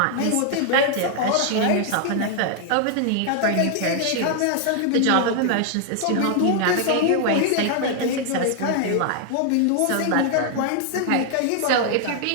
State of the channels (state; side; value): different; both; correlation 0.00